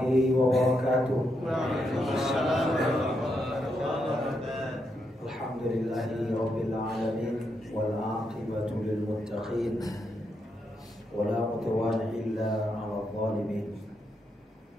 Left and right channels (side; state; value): both; normal; correlation 0.81